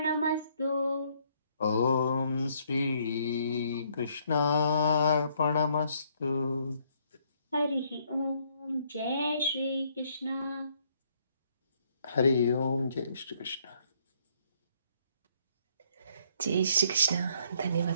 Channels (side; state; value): both; inverted; correlation -0.68